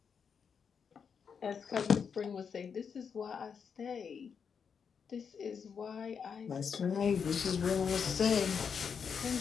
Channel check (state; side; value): quieter; right; 6.5 dB